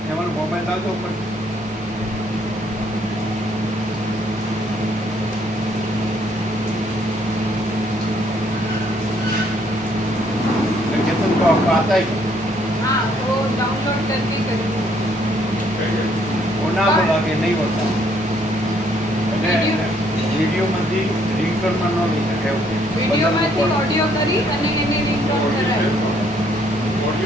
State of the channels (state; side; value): normal; both; correlation 0.67